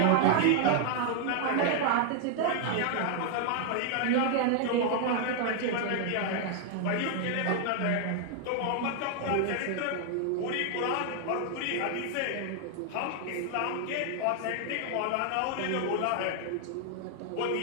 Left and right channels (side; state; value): both; different; correlation 0.00